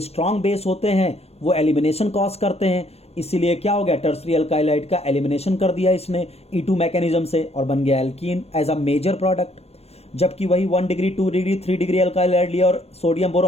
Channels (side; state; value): right; late; 0.30 ms